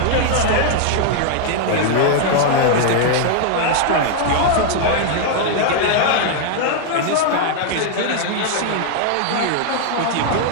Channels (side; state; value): both; different; correlation 0.00